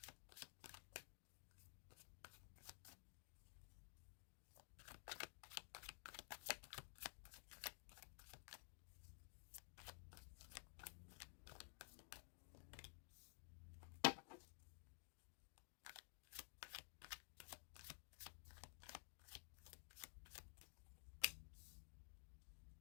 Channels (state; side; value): silent; right; digital silence